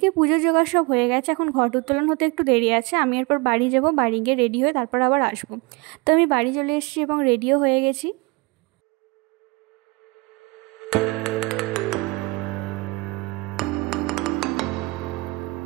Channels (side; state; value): left; quieter; 25.9 dB